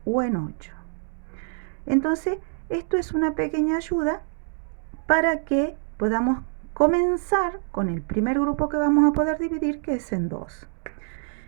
o en 8. Entonces, esto es una pequeña ayuda para que podamos comenzar con el primer grupo que vamos a poder dividir, que es en 2.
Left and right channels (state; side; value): silent; left; digital silence